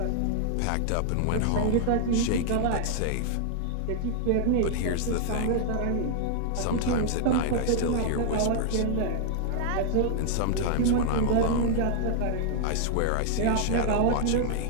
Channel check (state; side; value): different; both; correlation -0.01